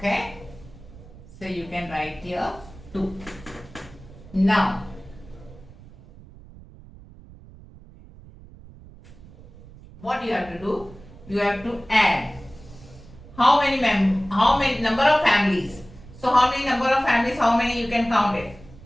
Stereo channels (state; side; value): noise; right; rumble, 20 dB below the sound